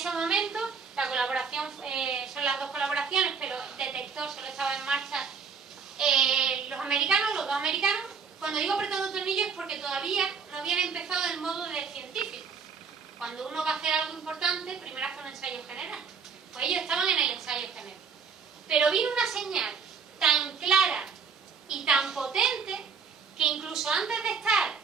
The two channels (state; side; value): quieter; left; 5.9 dB